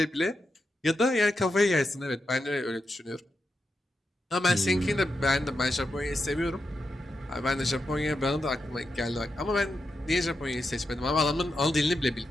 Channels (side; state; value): both; normal; correlation 0.87